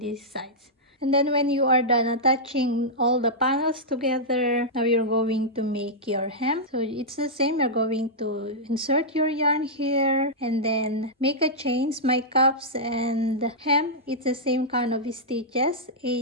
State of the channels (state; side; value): normal; both; correlation -0.11